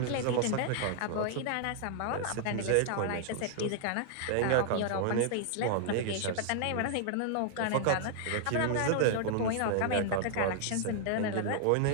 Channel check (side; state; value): both; different; correlation 0.00